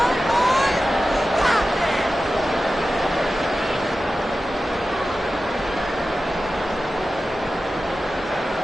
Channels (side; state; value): both; normal; correlation 0.94